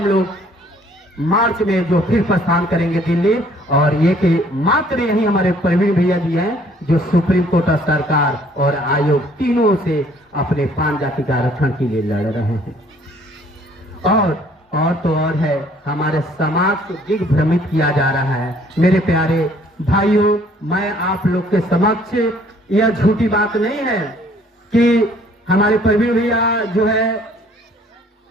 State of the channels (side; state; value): both; normal; correlation 0.60